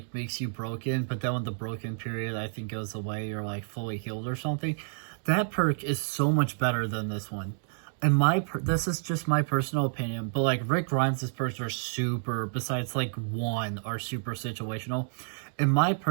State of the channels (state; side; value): silent; left; digital silence